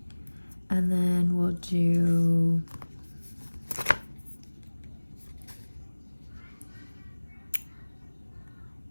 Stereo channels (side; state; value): both; inverted; correlation -1.00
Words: And then we'll do